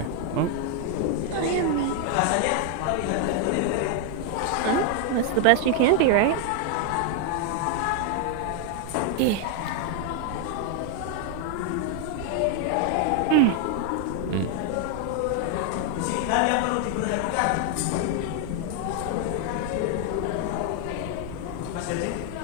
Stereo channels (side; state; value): both; different; correlation 0.00